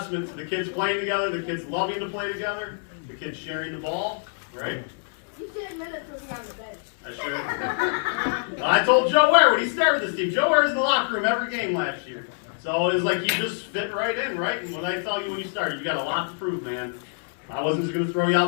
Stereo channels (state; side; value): silent; right; 61 dB below the other